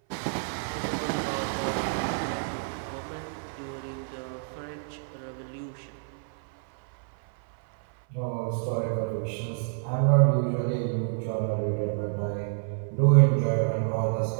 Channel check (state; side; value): silent; left; 59 dB below the other